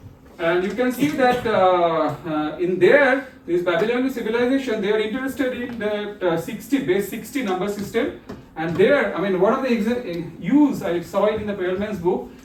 And you can see that in this Babylonian civilization, they are interested in the base 60 number system. And there, I mean, one of the use, I saw it in the Perelman's book,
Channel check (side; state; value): both; identical; correlation 1.00